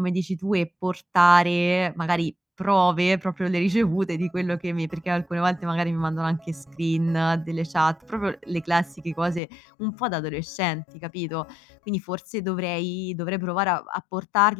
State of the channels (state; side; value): drops out; right; at 9.4 s